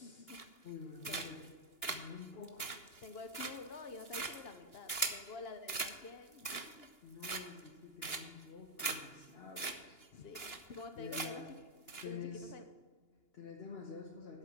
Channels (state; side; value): late; right; 2.9 ms